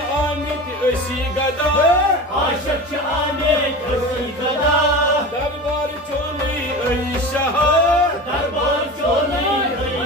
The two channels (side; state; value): both; normal; correlation 0.31